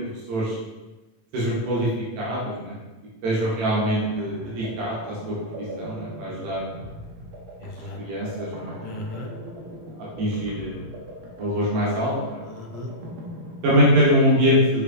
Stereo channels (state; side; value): late; left; 18 ms